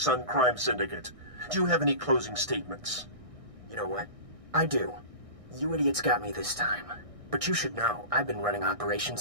Crime Syndicate. Do you have any closing statements? You know what? I do. You idiots got me this time. But you should know, I've been running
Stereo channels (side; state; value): left; late; 1.6 ms